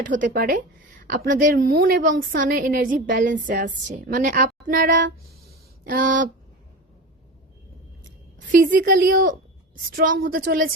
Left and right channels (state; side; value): normal; both; correlation 0.27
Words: হতে পারে। আপনাদের মুন এবং সানের এনার্জি ব্যালেন্সে আসছে, মানে আপনারা ফিজিক্যালিও স্ট্রং হতে